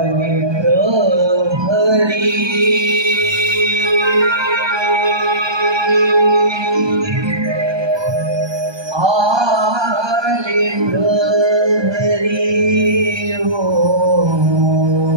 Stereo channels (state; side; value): late; left; 1.2 ms